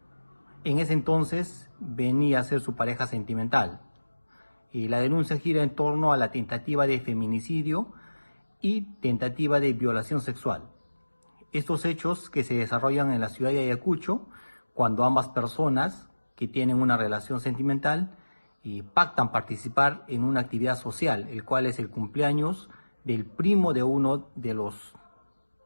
en ese entonces venía a ser su pareja sentimental. Y la denuncia gira en torno a la tentativa de feminicidio y tentativa de violación sexual. Estos hechos que se desarrollan en la ciudad de Ayacucho, cuando ambas personas que tienen una relación sentimental pactan participar en una actividad social, el cual es el cumpleaños del primo de uno de los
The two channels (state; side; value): inverted; both; correlation -1.00